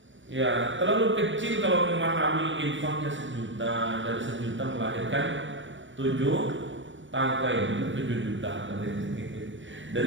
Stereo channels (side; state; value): left; late; 0.55 ms